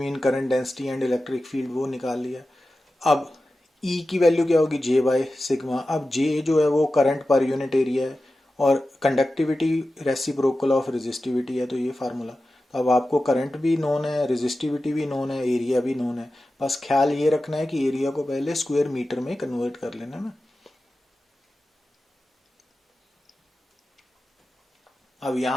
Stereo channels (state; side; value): normal; both; correlation 0.94